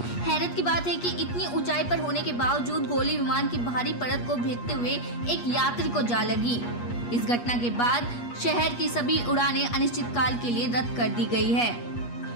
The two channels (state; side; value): late; right; 8.4 ms